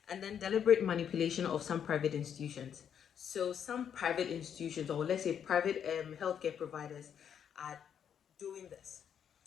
And then deliberate manipulation of some private institutions. So some private institutions, or let's say private healthcare providers, are doing this.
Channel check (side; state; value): right; quieter; 8.4 dB